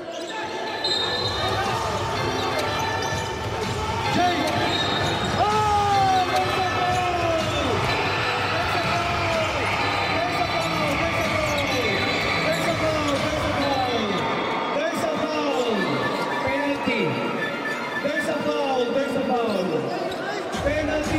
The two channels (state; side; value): identical; both; correlation 1.00